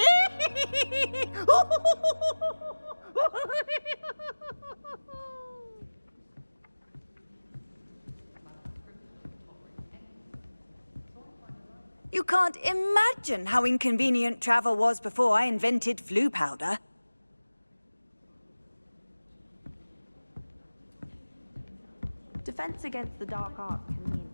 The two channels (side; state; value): both; inverted; correlation -1.00